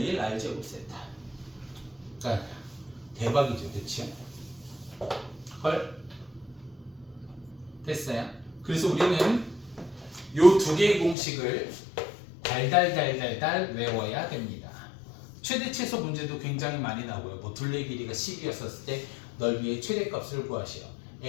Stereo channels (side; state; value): right; drops out; at 11.2 s